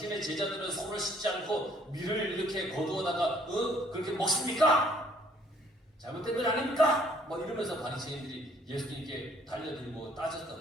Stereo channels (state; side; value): normal; both; correlation 0.62